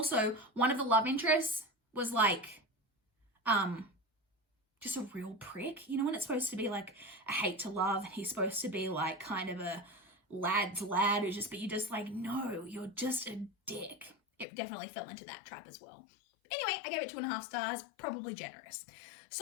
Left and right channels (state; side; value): drops out; right; at 14.5 s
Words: one of the love interests was like, just a real prick. You know when it's supposed to be like a hate to love and he's supposed to be like kind of a lad's lad who's just, but you're just like, no, you're just a dick. It definitely fell into that trap as well. Anyway, I gave it 2.5 stars, probably generous.